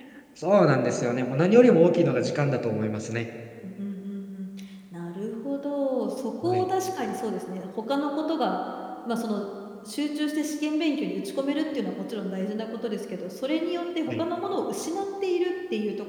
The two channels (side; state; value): both; identical; correlation 1.00